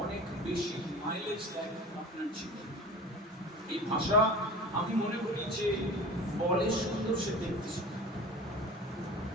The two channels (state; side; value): normal; both; correlation 0.36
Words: অনেক বেশি মাইলেজ দেয় আপনার জীবনে। এই ভাষা আমি মনে করি যে বলে সুন্দর সে দেখতে সুন্দর,